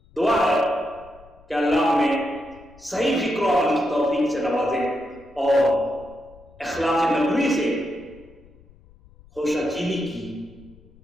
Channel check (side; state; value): left; noise; rumble, 26 dB below the sound